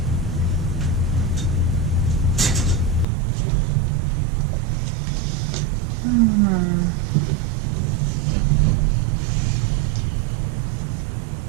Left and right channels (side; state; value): left; drops out; at 3.1 s